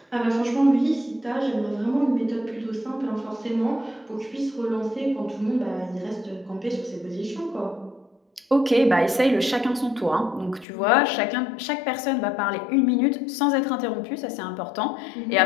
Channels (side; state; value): right; drops out; at 10.7 s